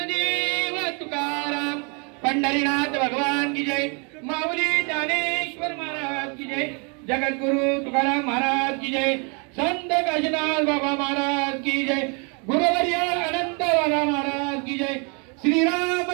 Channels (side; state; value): left; quieter; 34.6 dB